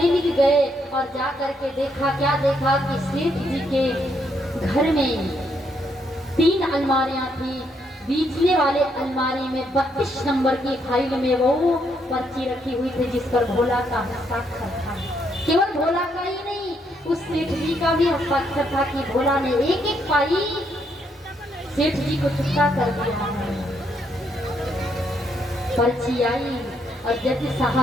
गए और जाकर के देखा, क्या देखा कि सेठ जी के घर में 3 अलमारियां थी। बीचले वाले अलमारी में 32 नंबर की फाइल में वो पर्ची रखी हुई थी जिस पर भोला का हस्ताक्षर था। केवल भोला का ही नहीं, उस सेठ जी का भी हस्ताक्षर था कि भोला ने एक एक पाई सेठ जी को चुकता कर दिया है। पर्ची आई और जज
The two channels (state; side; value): normal; both; correlation 0.74